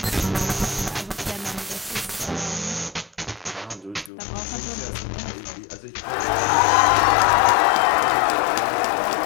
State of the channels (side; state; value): right; drops out; at 4.1 s